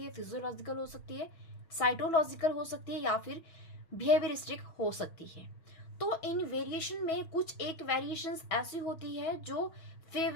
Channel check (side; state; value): right; late; 6.3 ms